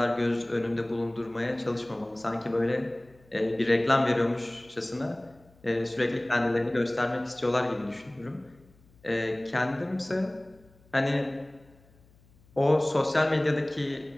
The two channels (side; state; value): left; noise; hum, 29 dB below the sound